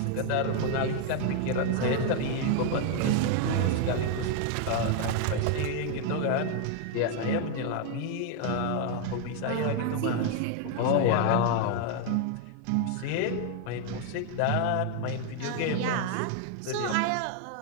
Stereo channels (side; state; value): both; different; correlation 0.00